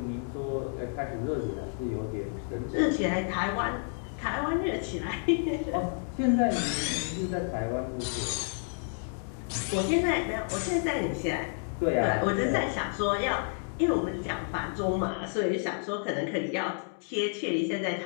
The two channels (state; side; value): silent; right; 58 dB below the other